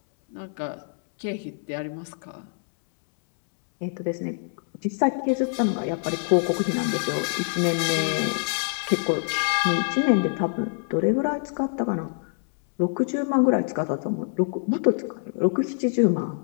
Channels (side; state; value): right; silent; 62 dB below the other